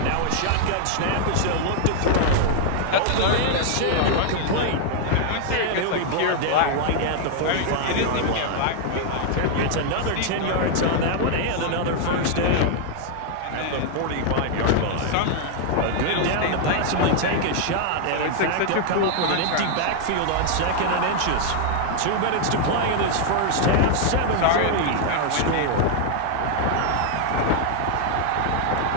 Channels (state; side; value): different; both; correlation 0.00